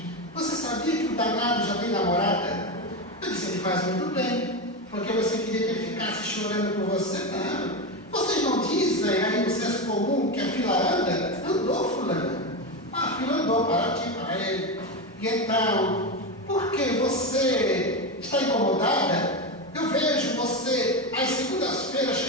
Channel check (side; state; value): both; normal; correlation 0.15